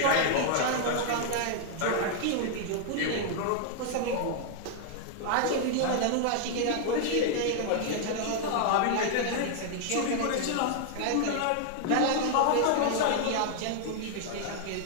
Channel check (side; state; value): both; different; correlation 0.00